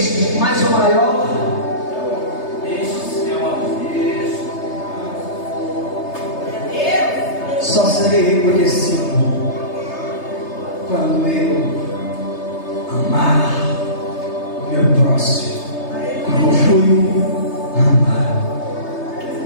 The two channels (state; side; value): late; right; 3.3 ms